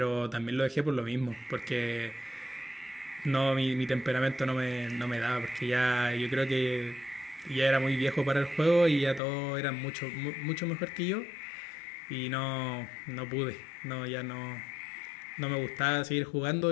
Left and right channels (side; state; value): right; drops out; at 9.2 s